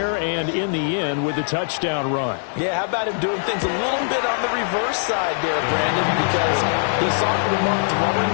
and in the end with the touchdown run. Yeah, how about him doing things a little bit on the reverse side there, Brandon, because he saw Lamar throwing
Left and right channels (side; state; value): right; silent; digital silence